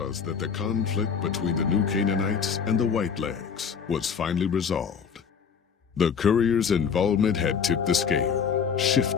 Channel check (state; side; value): quieter; right; 6.6 dB